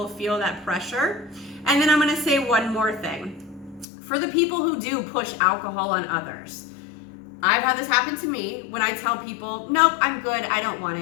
feel that pressure. And then I'm going to say one more thing. For the people who do push alcohol on others, I've had this happen to me when I tell people, nope, I'm good, I don't want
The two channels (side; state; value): right; drops out; at 3.9 s